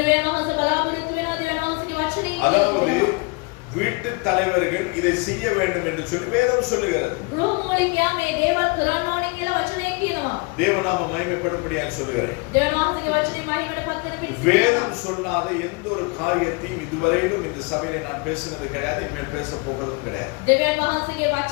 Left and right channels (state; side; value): quieter; right; 28.0 dB